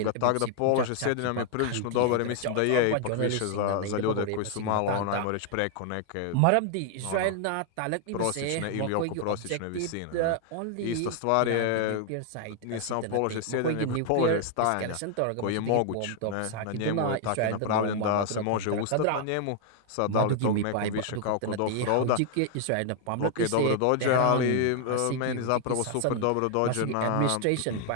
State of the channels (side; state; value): both; different; correlation 0.00